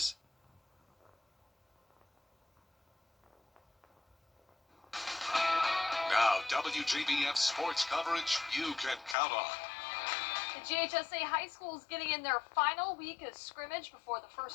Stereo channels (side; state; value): right; drops out; at 9.2 s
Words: Now, WJBF sports coverage you can count on. The GHSA High School is getting in their final week of scrimmage before the